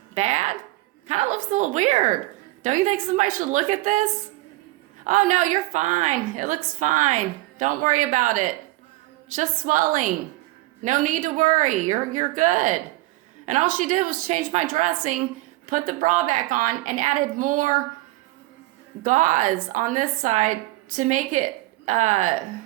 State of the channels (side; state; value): left; quieter; 20.0 dB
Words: bad? Kind of looks a little weird. Don't you think somebody should look at this? Oh no, you're fine. It looks fine. Don't worry about it. Just swelling. No need to worry. You're good. And all she did was change my dressing, put the bra back on, and added more gauze on this side to make it